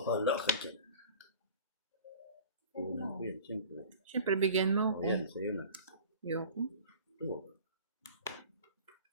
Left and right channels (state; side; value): inverted; both; correlation -0.42